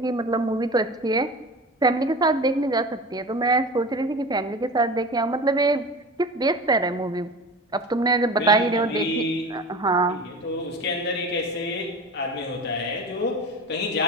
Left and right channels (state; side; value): normal; both; correlation 0.34